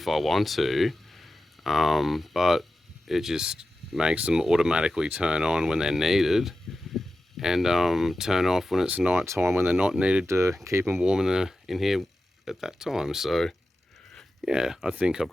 I want to. But it just makes them automatically turn on when they're needed, and turn off when it's night time when they're not needed, to keep them warm in here at that time. So yeah, I think I've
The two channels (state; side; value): normal; both; correlation 0.93